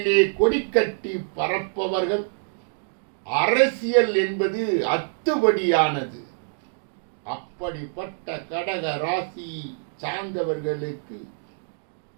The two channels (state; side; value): silent; left; digital silence